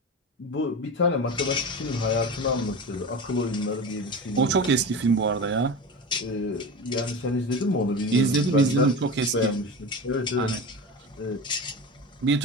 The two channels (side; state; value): both; normal; correlation 0.28